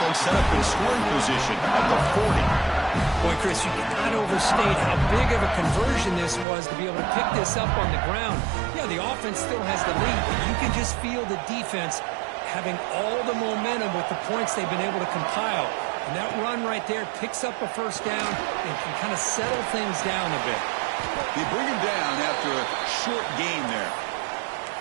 set up in scoring position at the 40. Boy, Chris, you cannot overstate how big of a conversion this was to be able to pick this up on the ground. Yeah, the offense still has the lead, but you can just feel the defense having all the momentum with the points they've been able to compile. And that run right there picks up a first down and can kind of settle things down a bit. They bring him down after a short game there.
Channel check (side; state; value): left; drops out; at 6.5 s